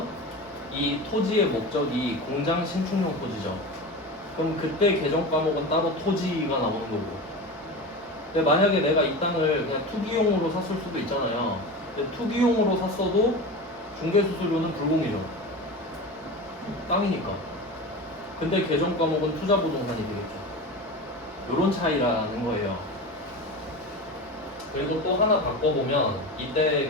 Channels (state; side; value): normal; both; correlation 0.28